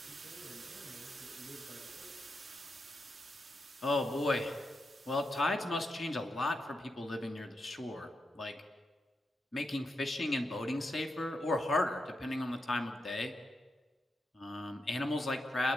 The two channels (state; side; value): normal; both; correlation 0.85